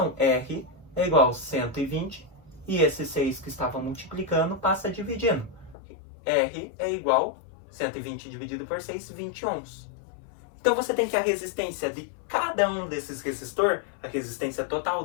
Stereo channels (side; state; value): right; drops out; at 5.8 s